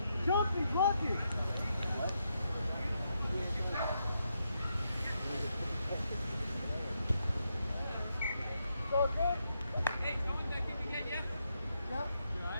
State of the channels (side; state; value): both; inverted; correlation -0.81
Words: Jumping, blocking. Hey, Tom, that kick again, yeah? Yeah.